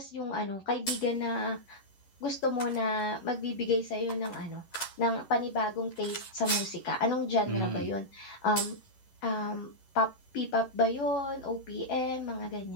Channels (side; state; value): right; late; 11 ms